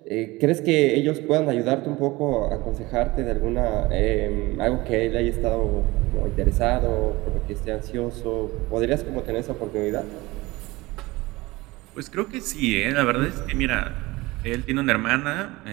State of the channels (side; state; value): left; quieter; 20.9 dB